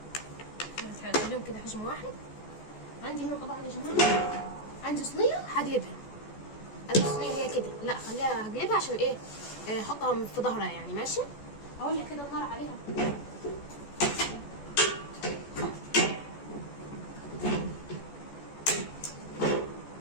هخليهم كده حجم واحد. عندي هنا طبعا يا جماعه عندي صينيه هقلبها. عندي صينيه هي كده، لا خليها هقلبها عشان ايه احطها في ظهرها يعني ماشي. اولع كده النار عليها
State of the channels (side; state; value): right; late; 14 ms